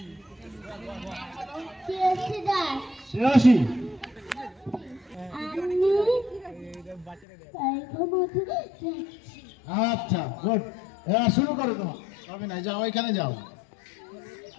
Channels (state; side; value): drops out; right; at 7.2 s